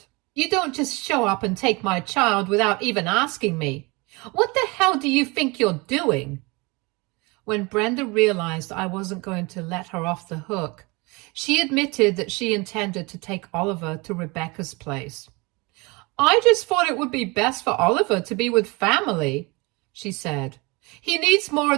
"You don't just show up and take my child without even asking me. What the hell do you think you're doing?" When Brenda realized I wasn't going to let her off the hook, she admitted that she intended to take Oliver to Rebecca's place. "I just thought it would be best for Oliver to be with family," she said. "He needs more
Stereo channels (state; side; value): quieter; left; 26.3 dB